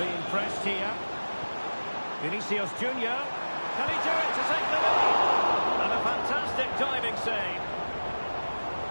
pressed here. Vinicius Junior. Can he do it to take the lead? And a fantastic diving save.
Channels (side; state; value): both; inverted; correlation -1.00